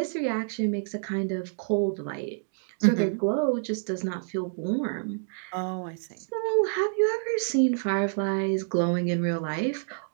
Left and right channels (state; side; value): silent; left; digital silence